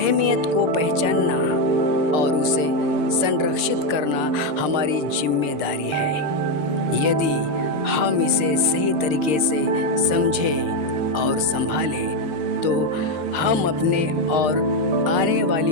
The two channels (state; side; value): late; left; 6.7 ms